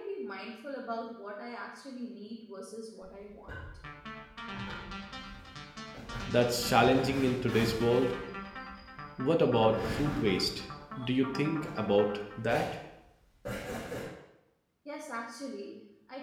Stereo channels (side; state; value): both; identical; correlation 1.00